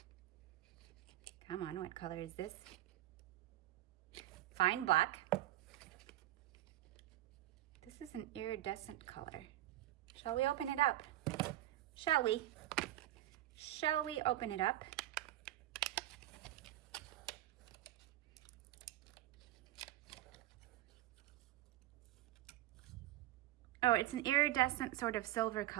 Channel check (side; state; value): left; quieter; 14.6 dB